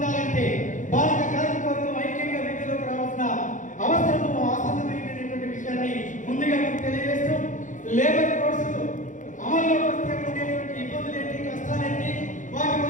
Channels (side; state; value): right; late; 0.37 ms